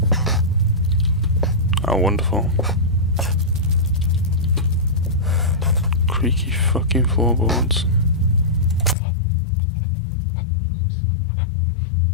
Oh, wonderful. Creaky fucking floorboards.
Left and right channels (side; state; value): right; drops out; at 9.0 s